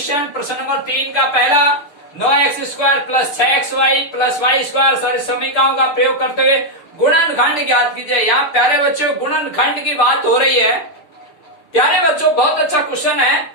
प्रश्न नंबर 3 का पहला, 9x स्क्वायर प्लस 6xy प्लस वाई स्क्वायर सर्व समीकरणों का प्रयोग करते हुए गुणनखंड ज्ञात कीजिए। यहाँ प्यारे बच्चों गुणनखंड की बात हो रही है प्यारे बच्चों, बहुत अच्छा क्वेश्चन है।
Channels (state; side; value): late; right; 6.6 ms